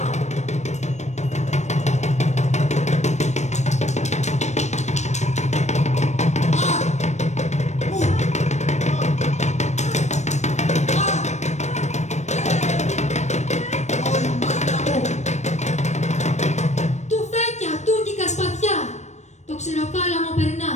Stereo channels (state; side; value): late; right; 0.34 ms